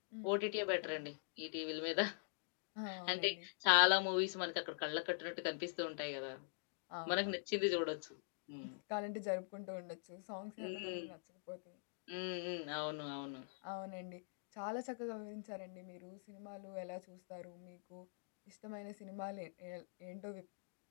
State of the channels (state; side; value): silent; right; digital silence